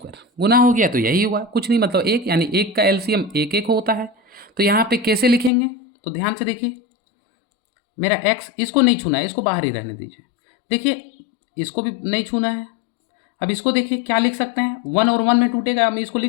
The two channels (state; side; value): drops out; right; at 5.5 s